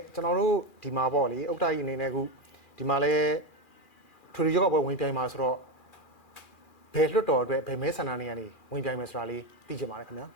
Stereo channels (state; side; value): late; right; 2.4 ms